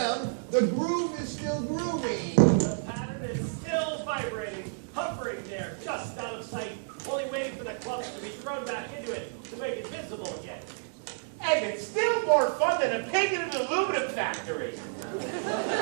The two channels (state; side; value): silent; left; digital silence